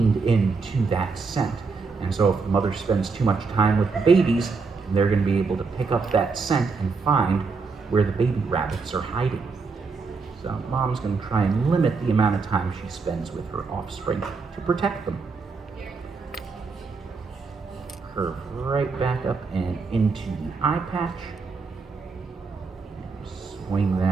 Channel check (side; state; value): left; quieter; 4.6 dB